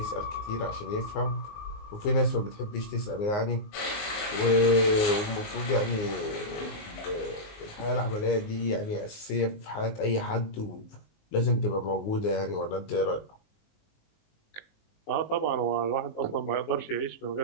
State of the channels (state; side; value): late; right; 19 ms